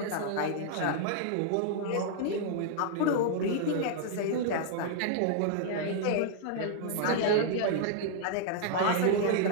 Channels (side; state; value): both; different; correlation -0.01